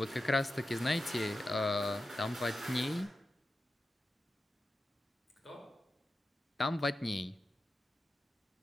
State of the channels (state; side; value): normal; both; correlation 0.92